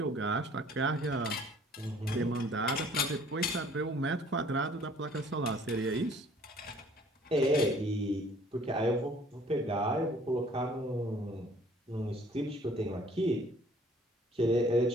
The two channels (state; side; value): normal; both; correlation 0.56